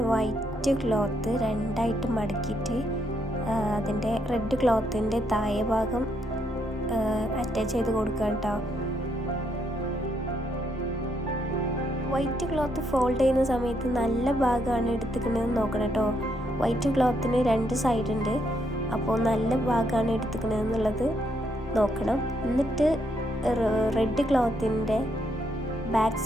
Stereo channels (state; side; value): normal; both; correlation 0.75